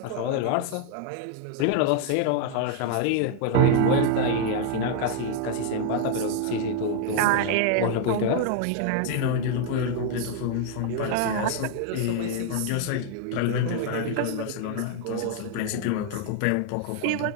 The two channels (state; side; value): different; both; correlation 0.00